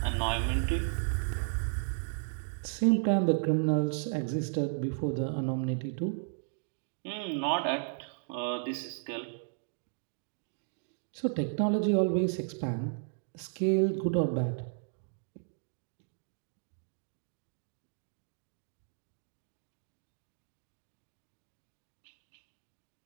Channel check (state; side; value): silent; left; digital silence